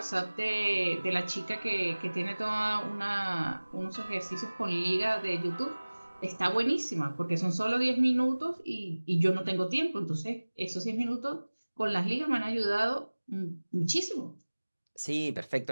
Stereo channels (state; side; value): inverted; both; correlation -1.00